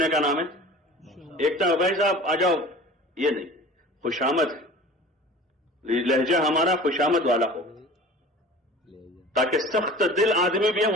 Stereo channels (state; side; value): normal; both; correlation 0.41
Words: کا نام ہے؟ ایک تو بھائی صاحب آ جاؤ، یہ نہیں، خوشامد ہے، لہجہ ہمارا خوشامد والا ہو تاکہ سخت دل آدمی بھی ہے